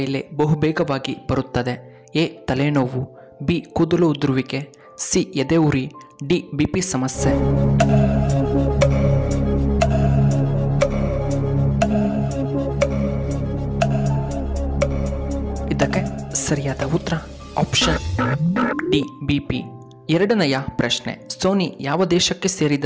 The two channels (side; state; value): both; identical; correlation 1.00